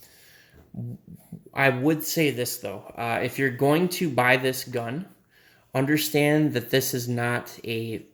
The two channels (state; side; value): identical; both; correlation 1.00